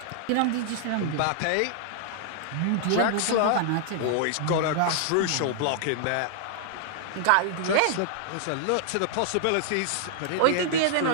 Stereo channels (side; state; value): both; different; correlation -0.01